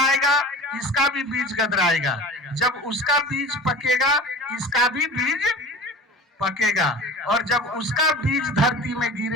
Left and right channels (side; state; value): both; normal; correlation 0.37